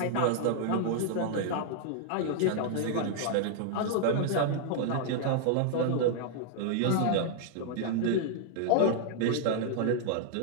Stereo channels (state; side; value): different; both; correlation -0.01